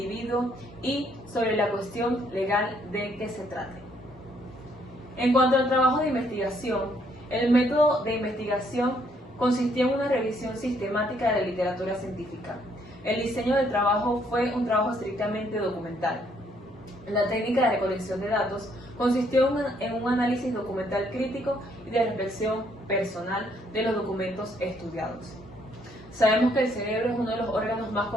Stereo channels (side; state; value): both; normal; correlation 0.69